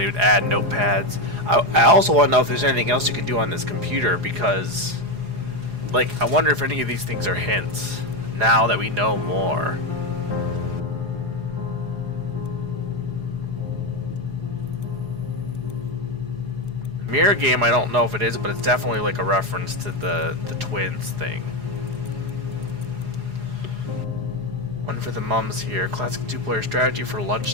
would add notepads. I also want to know if there's anything else you can do on this computer because, like, I wonder if any of these things are hints now that we know more. Mirror game, I don't know if it is, but it's definitely like a reference to the twins thing. One for the mums here. Classic two-player strategy for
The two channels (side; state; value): left; late; 4.8 ms